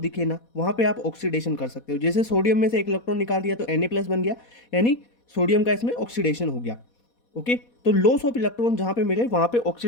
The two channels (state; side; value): late; right; 4.2 ms